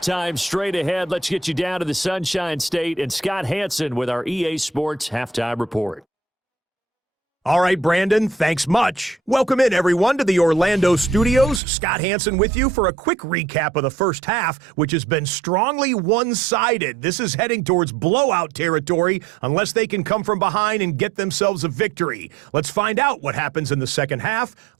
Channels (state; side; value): drops out; left; at 11.6 s